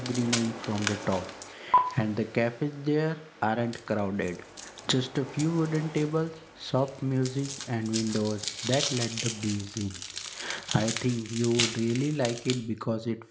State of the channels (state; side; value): identical; both; correlation 1.00